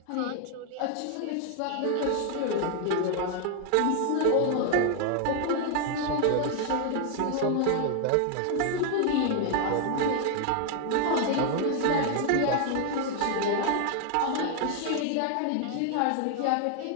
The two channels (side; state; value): both; different; correlation 0.00